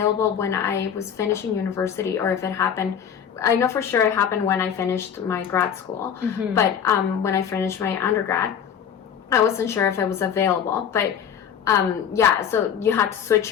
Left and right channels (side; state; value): right; quieter; 8.2 dB